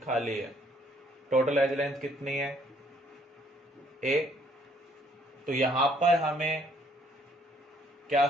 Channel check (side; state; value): both; normal; correlation 0.65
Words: है। टोटल एज लेंथ कितनी है, a। तो यहां पर हमें क्या